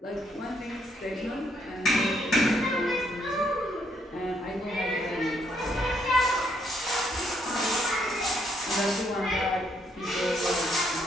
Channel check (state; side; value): normal; both; correlation 0.72